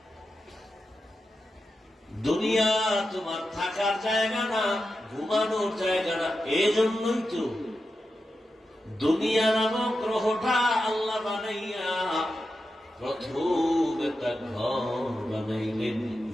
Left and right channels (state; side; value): normal; both; correlation 0.90